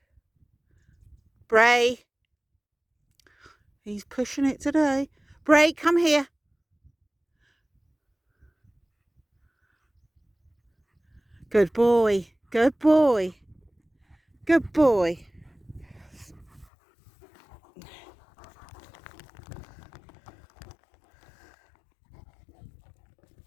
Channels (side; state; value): right; drops out; at 16.7 s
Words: Brea. He's pushing it today. Brea, come here. Good boy. Good boy. Good boy.